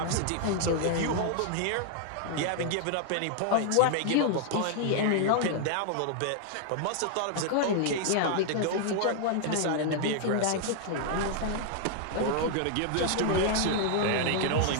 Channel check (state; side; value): different; both; correlation 0.00